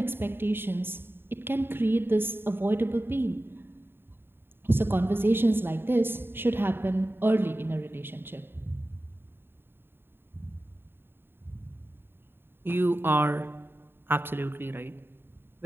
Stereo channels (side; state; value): left; late; 0.11 ms